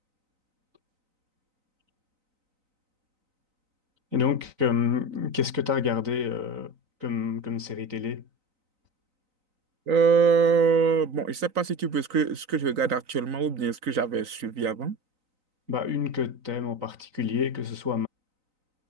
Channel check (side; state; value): left; late; 3.9 ms